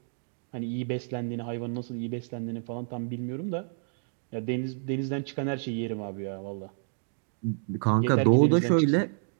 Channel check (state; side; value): silent; left; digital silence